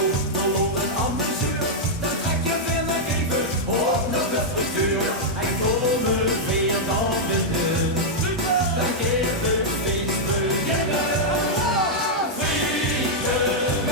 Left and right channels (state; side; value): normal; both; correlation -0.05